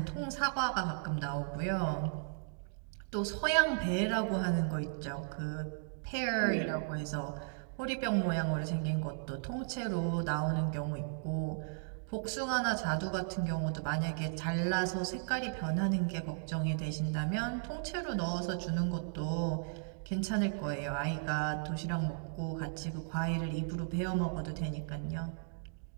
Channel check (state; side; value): silent; left; digital silence